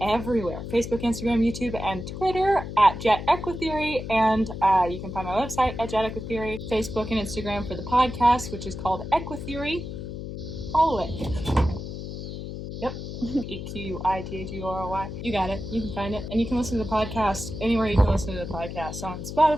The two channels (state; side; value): noise; left; hum, 8 dB below the sound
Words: everywhere: Facebook, Instagram, YouTube, and Twitter at EQUITHEORY, and you can find my website at EQUITHEORY, Facebook and Instagram for the podcast, which is called EQUITHEORY. Follow it. Yep. EQUITHEORY. You got it. You can find it. And you can listen to the podcast anywhere you can listen to the podcast, on